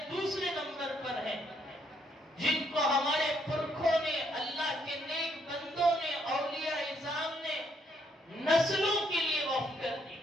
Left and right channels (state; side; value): normal; both; correlation 0.72